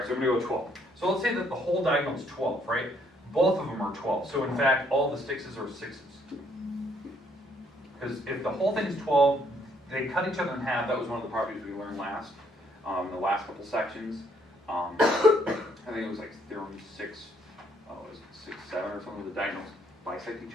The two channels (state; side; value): normal; both; correlation 0.68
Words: so I'm gonna go with 12. So let's say that the whole diagonal is 12, right? Both of them are 12. So in fact, all the sixes are 6s. Because if the whole thing is 12, they cut each other in half. That was one of the properties we learned last, in the last couple sections. I think it was like Theorem 6, was it 6, 7 or something, the diagonals bisect each